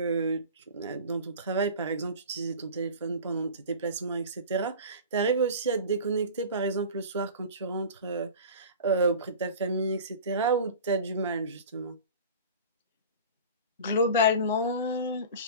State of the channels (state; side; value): inverted; both; correlation -0.37